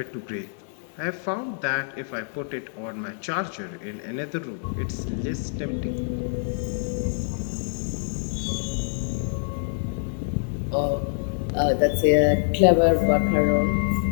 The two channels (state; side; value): silent; right; 61 dB below the other